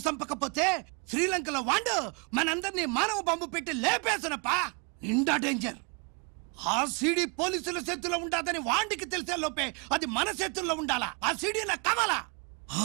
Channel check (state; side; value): quieter; left; 34.1 dB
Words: చంపకపోతే శ్రీలంకలో వాండు మనందరినీ మానవ బాంబు పెట్టి లేపేసనప్ప నిండా డేంజర్ ఆ సీడీ పోలీసుల చేతుల్లో ఉండాదని వాండికి తెలిసే లోపే అది మన చేతుల్లో ఉండాలా ఆ సీడీ నాకు కావాలా